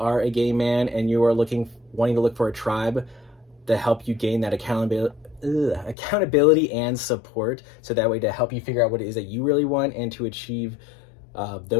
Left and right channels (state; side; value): drops out; right; at 6.0 s